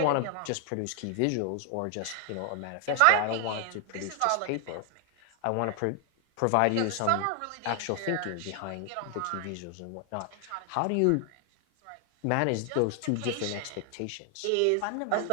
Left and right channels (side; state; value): both; different; correlation 0.00